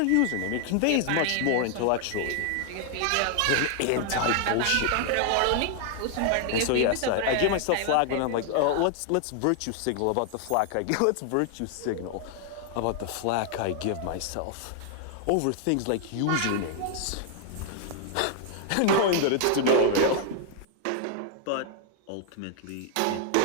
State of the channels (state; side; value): different; both; correlation 0.00